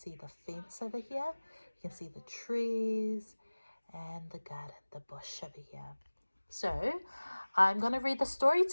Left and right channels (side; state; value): both; inverted; correlation -1.00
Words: the fence over here. You can see the trees and the garden, the bush over here. So I'm going to read the story